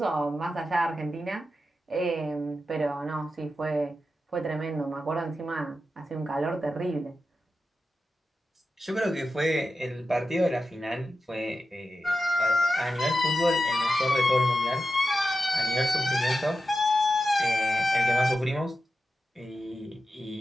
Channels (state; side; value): normal; both; correlation 0.91